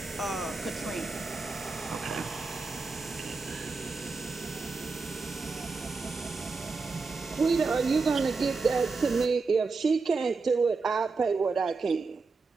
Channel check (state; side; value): quieter; left; 4.3 dB